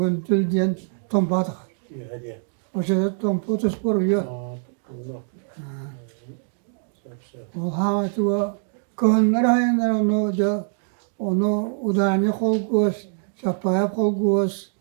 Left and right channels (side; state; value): left; silent; digital silence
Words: diyen tompa takar. İyi hadi. O şeyde tompa tuspor yiyor. Allah. O havası kıhınlar hayanlar onu udani kol göz, şapaya kol göz,